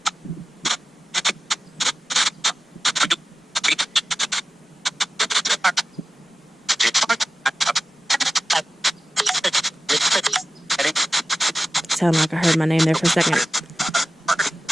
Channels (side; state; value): both; normal; correlation 0.94